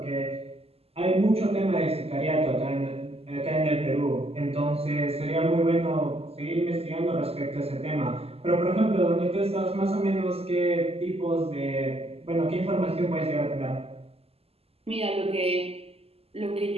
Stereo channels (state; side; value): late; left; 0.29 ms